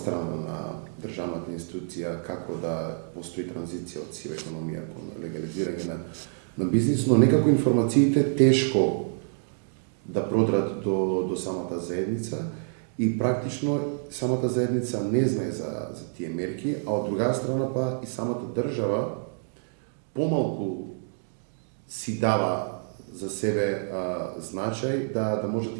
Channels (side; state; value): left; silent; digital silence